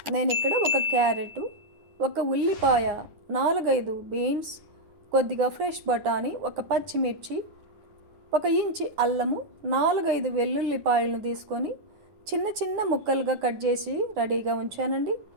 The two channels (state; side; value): late; left; 9.7 ms